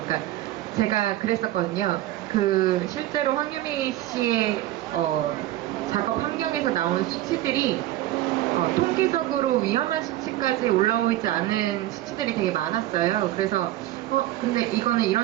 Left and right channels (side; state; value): left; quieter; 14.9 dB